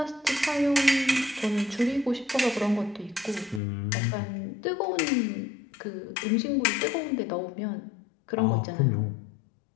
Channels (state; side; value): drops out; right; at 3.6 s